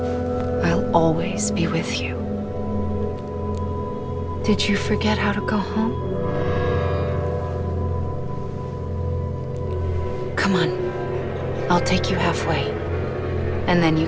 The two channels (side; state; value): both; identical; correlation 1.00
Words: I'll always be with you. Did you forget how to go home? Come on. I'll take you halfway, and then you